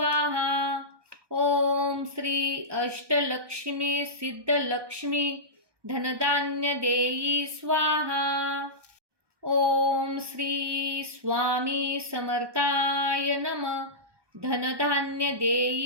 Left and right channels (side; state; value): left; late; 1.2 ms